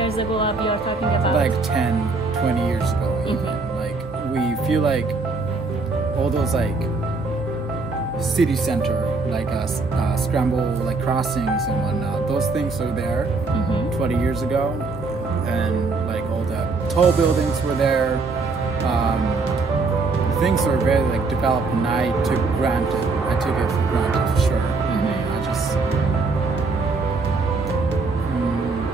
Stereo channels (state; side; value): quieter; left; 3.9 dB